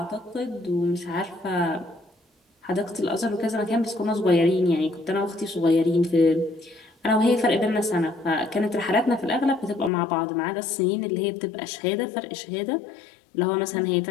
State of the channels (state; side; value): drops out; right; at 9.9 s